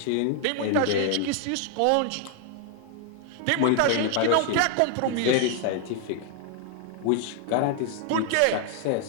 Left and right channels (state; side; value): different; both; correlation 0.00